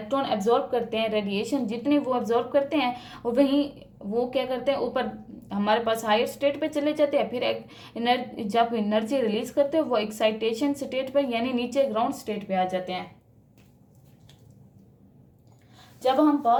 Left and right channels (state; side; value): identical; both; correlation 1.00